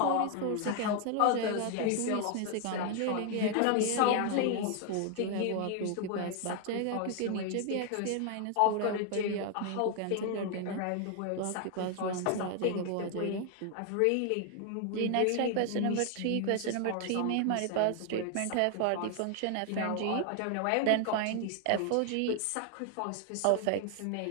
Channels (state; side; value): different; both; correlation 0.00